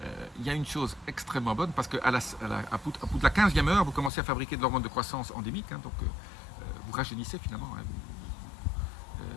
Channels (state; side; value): drops out; right; at 4.1 s